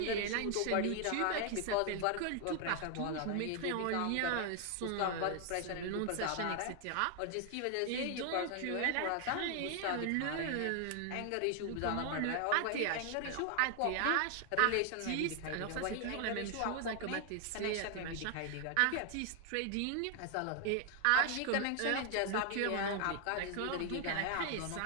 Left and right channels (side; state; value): both; different; correlation 0.00